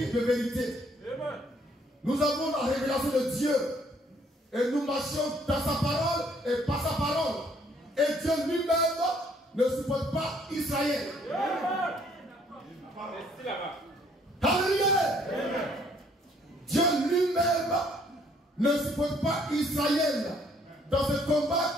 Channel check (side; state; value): both; normal; correlation 0.64